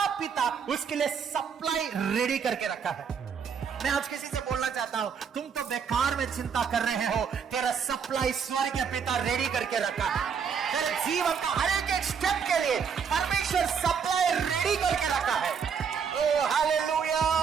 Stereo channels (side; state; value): left; quieter; 6.7 dB